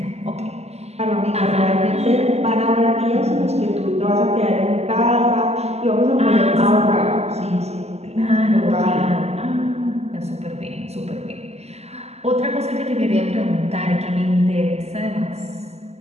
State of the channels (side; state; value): left; late; 0.30 ms